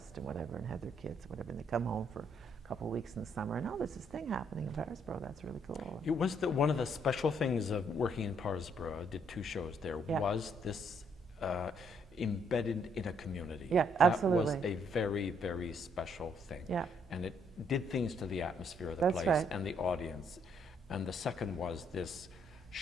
and whatever and had their kids, whatever, and they come home for a couple of weeks in the summer, and there's this thing happening in Parsboro, that's really cool. It was one of the special things of working in Parsboro, I did 2 shows there, was this embedded in a community. Yeah, absolutely. That was a very, very special thing. Yeah. And it did things to the atmosphere of the place and the audience. And the second was this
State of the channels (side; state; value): both; normal; correlation 0.70